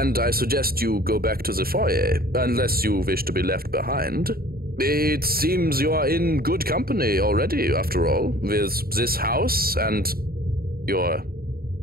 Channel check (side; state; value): left; late; 0.43 ms